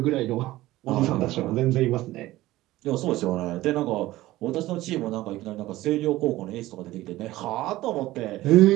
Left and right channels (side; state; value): left; quieter; 16.9 dB